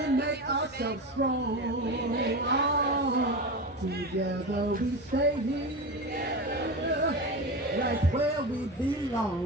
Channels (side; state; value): both; normal; correlation 0.23